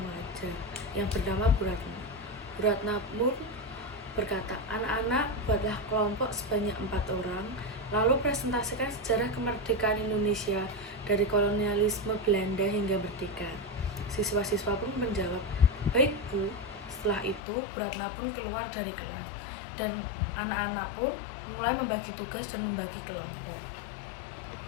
yang bernama Bu Ratna. Bu Ratna pun berkata, "Anak-anak, buatlah kelompok sebanyak 4 orang, lalu presentasikan sejarah kemerdekaan Indonesia dari kolonialisme Belanda hingga merdeka." Siswa-siswa pun menjawab, "Baik, Bu." Setelah itu, Bu Ratna pun keluar dari kelas, dan anak-anak pun mulai membagi tugas dan membagi kelompok.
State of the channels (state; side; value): drops out; right; at 17.4 s